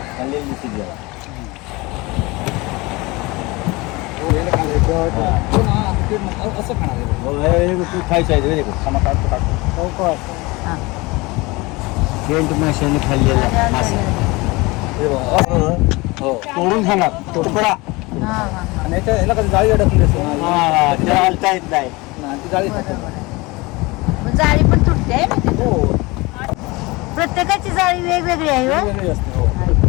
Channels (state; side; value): quieter; right; 23.6 dB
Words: असं खाणार तू खायचं आहे हा. सेंट माशाने खाल्लेला मासा. हो तोडून खाणार तुकडा. हा, हा. आणि याला कधी जाळी अडकली असेल ना त्याला हलता येत नाही. ती जाळी खाते. बरोबर आहे. मग जाळी पण तुटते आहे ना तिथं? हो प्रत्येकाची जाळी वेगवेगळी आहे हो. वेगळी असते. हो